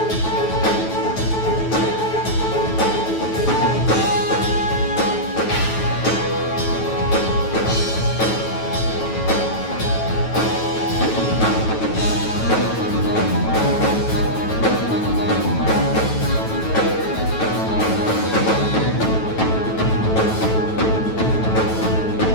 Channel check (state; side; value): late; right; 9.2 ms